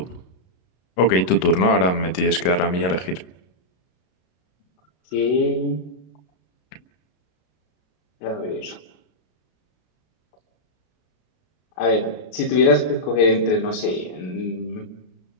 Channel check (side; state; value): right; late; 33 ms